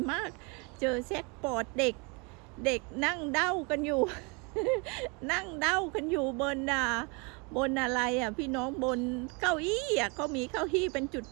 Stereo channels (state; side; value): quieter; left; 31.2 dB